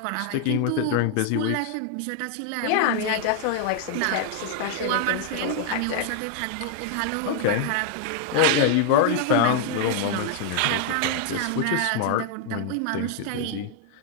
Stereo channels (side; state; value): both; different; correlation 0.00